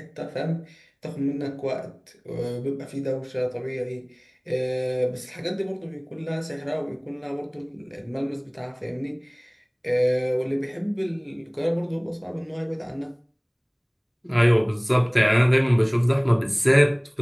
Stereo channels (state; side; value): identical; both; correlation 1.00